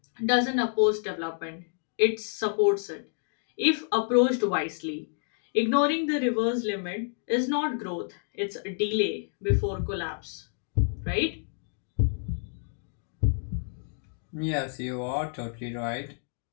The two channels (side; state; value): right; silent; 59 dB below the other